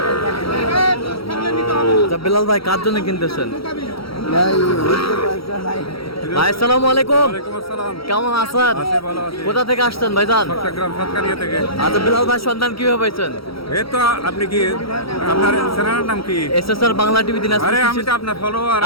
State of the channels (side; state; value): right; late; 0.75 ms